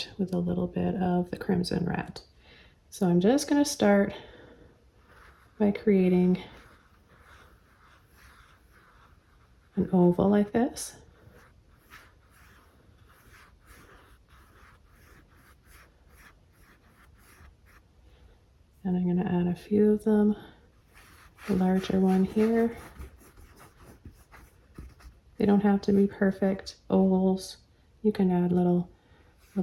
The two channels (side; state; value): both; identical; correlation 1.00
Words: with a little bit of the crimson red. So I'm just going to start by creating an oval like this. And I'm going to add a few of them, a larger one here. They don't have to be perfect ovals. You can add little